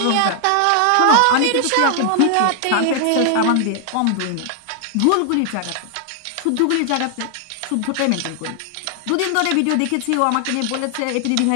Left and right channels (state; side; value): different; both; correlation 0.00